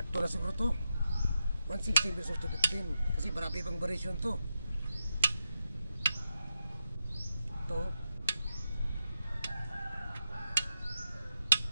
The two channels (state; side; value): inverted; both; correlation -0.86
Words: 2 na siguro to. 116 versus 15 kasi marami pang variation to. Ito.